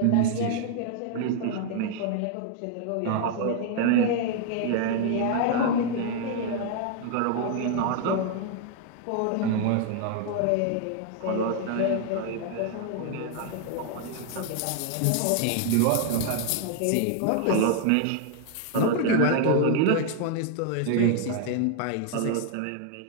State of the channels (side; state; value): both; different; correlation 0.00